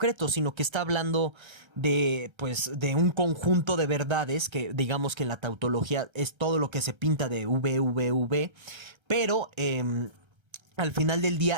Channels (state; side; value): late; left; 1.3 ms